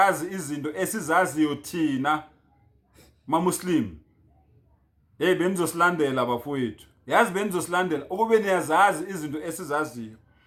izinto esizaziyo thina maMuslim. Hey benizosilandela bafowethu. Yazi benizosilandela ukube niyazazi izinto esizaziyo.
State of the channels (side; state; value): both; identical; correlation 1.00